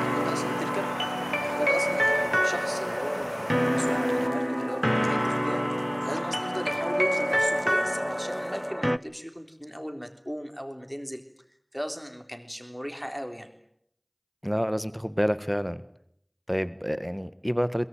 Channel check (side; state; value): both; identical; correlation 1.00